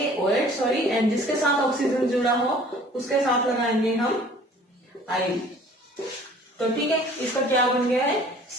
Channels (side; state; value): both; normal; correlation 0.51